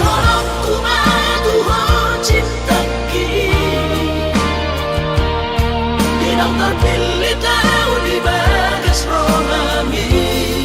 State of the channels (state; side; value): identical; both; correlation 1.00